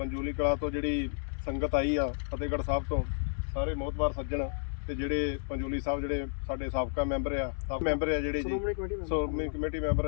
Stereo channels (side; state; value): right; silent; 57 dB below the other